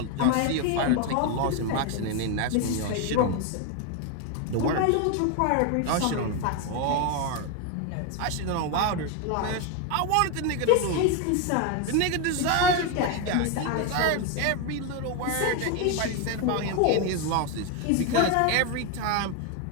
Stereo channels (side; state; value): both; different; correlation 0.01